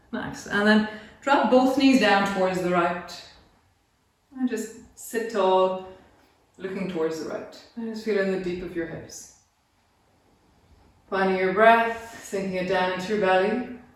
Nice. And then drop both knees down towards the right. And just sit tall, looking towards the right. And just feeling the deep of your hips. Finding your breath, sinking it down into your belly.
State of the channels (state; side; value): identical; both; correlation 1.00